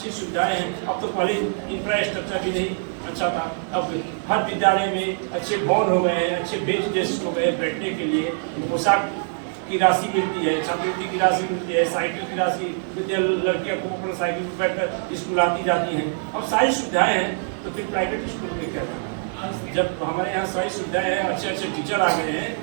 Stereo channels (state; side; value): silent; left; digital silence